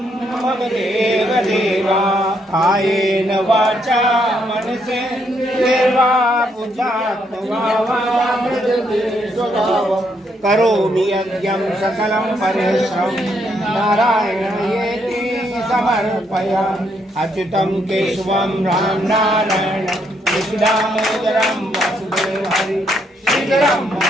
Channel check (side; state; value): both; normal; correlation 0.74